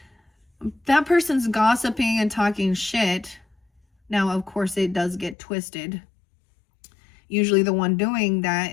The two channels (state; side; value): drops out; right; at 5.4 s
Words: that person's gossiping and talking shit. Now, of course, it does get twisted. Usually the one doing that